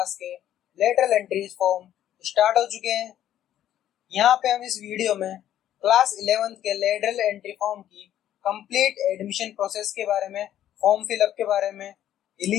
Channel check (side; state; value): right; quieter; 11.6 dB